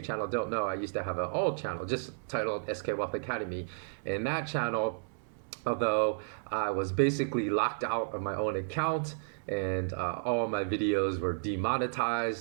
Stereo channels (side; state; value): left; silent; 56 dB below the other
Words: channel don't know, I used to have an old channel just titled SK Wealth Academy. And that channel, although I was basically locked out of my own account, and all my videos were